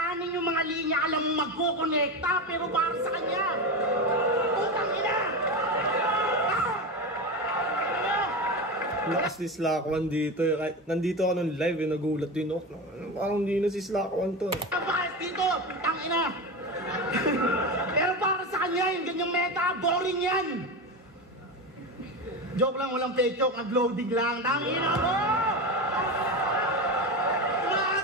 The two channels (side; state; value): both; normal; correlation 0.21